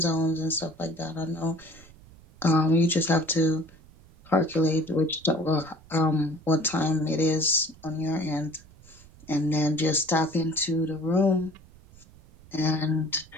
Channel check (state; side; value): noise; right; rumble, 24 dB below the sound